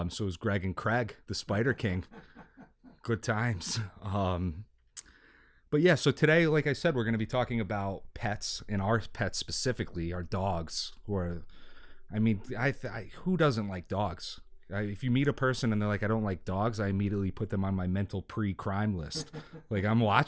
it was Greg and Craig, the Spider King. Good times. But yeah, so today, like I said, we're going to be talking about pets, and our pets specifically, our dogs. Who doesn't like dogs? If you meet a person and they're like, I don't like dogs, I immediately put them on my mental pre-crime list. Like, I'm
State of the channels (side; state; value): both; identical; correlation 1.00